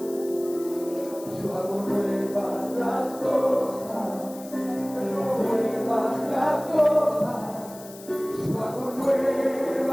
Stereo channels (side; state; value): left; noise; hiss, 18 dB below the sound